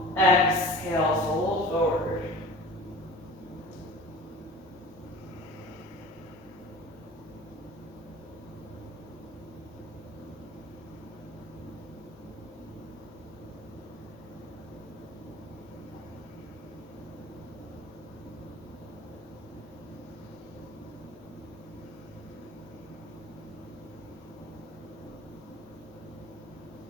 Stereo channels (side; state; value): both; normal; correlation 0.40